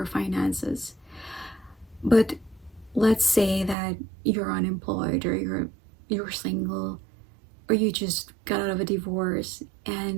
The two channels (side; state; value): left; drops out; at 3.8 s